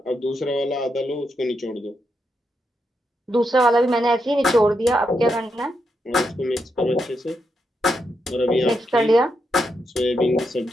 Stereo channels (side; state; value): both; normal; correlation 0.83